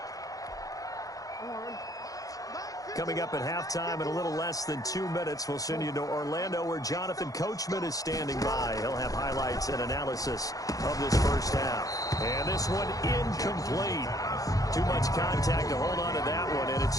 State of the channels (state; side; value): late; right; 0.17 ms